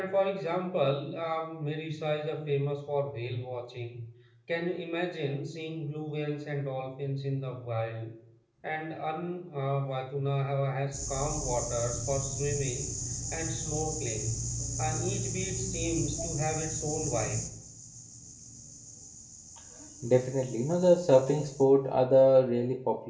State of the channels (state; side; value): identical; both; correlation 1.00